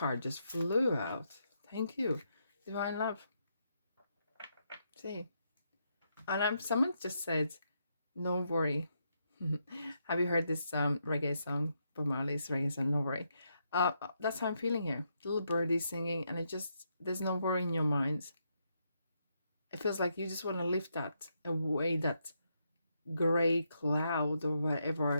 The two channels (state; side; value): inverted; both; correlation -0.79